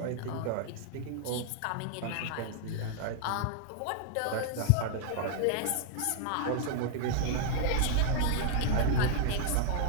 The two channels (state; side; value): different; both; correlation -0.01